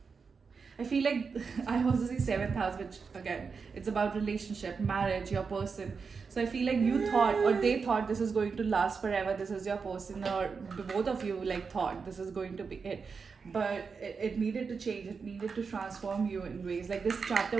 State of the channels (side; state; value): left; quieter; 5.3 dB